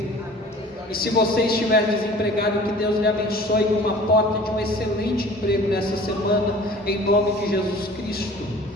E se você estiver desempregado, que Deus lhe abençoe com uma porta de um excelente emprego nessa semana, em nome de Jesus Cristo.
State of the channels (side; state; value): both; normal; correlation 0.46